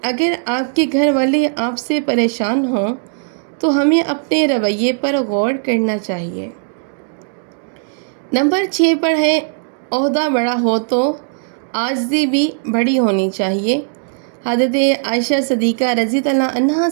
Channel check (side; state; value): left; silent; 68 dB below the other